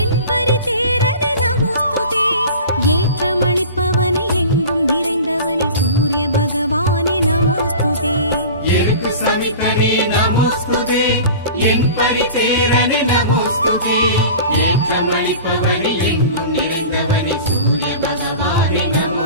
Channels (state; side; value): inverted; both; correlation -0.38